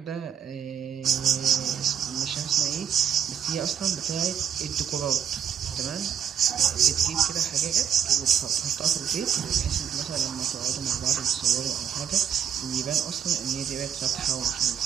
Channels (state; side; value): quieter; left; 8.7 dB